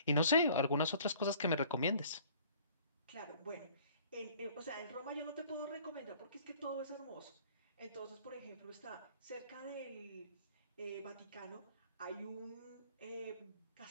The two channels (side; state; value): both; inverted; correlation -0.53